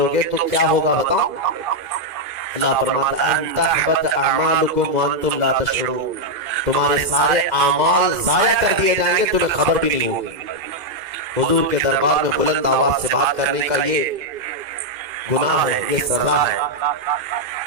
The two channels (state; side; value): late; left; 2.0 ms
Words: گے تو کیا ہوگا بتاؤ؟ اللہ فرماتا ہے ان تحبط اعمالکم وانتم لا تشعرون، تمہارے سارے اعمال ضائع کر دیے جائیں گے، تمہیں خبر بھی نہیں ہوگی۔ حضور کے دربار میں بلند آواز سے بات کرنے کا یہ گناہ ہے، یہ سزا ہے۔